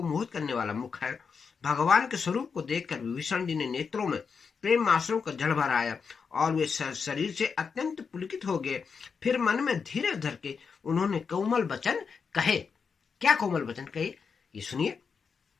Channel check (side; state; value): right; quieter; 5.7 dB